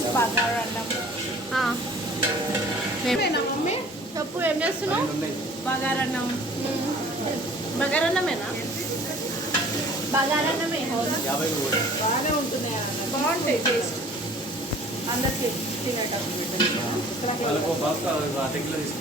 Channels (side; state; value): both; normal; correlation 0.49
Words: మమ్మీ చెప్పు, ఏం చేస్తున్నావు? బగారన్నం. బగారన్నమేనా? బగారన్నమే. బాగానే ఉంటున్నాయి, బాగుంటాయి టేస్ట్. అందరికి తినేటప్పుడు